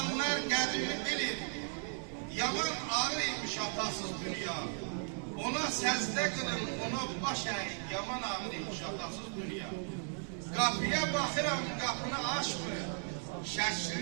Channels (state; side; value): silent; left; 54 dB below the other